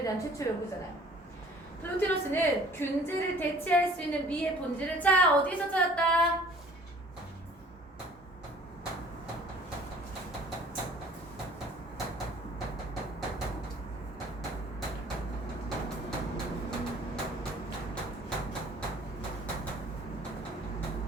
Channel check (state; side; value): normal; both; correlation 0.52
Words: 대한 최초의 연구잖아요. 플로티누스는 균제를 대체할 수 있는 미의 본질을, 자, 어디서 찾았다?